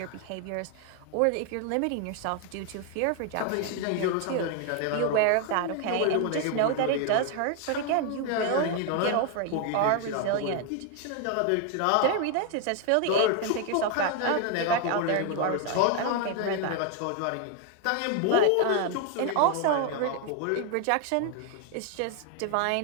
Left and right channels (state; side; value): different; both; correlation 0.01